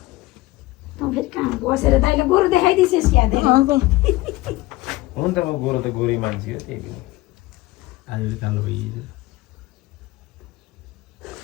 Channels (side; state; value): right; quieter; 19.1 dB